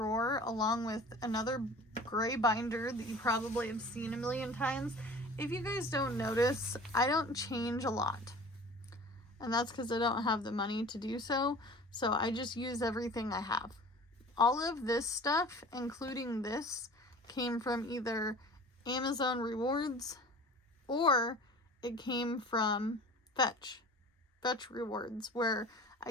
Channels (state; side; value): normal; both; correlation 0.43